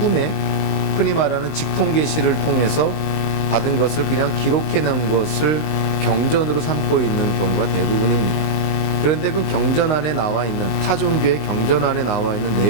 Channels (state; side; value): late; right; 19 ms